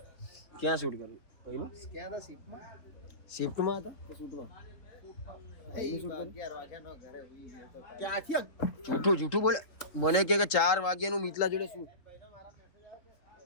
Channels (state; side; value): late; right; 3.6 ms